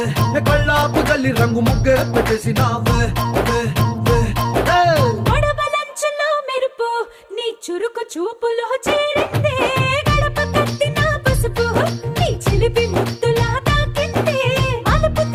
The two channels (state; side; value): identical; both; correlation 1.00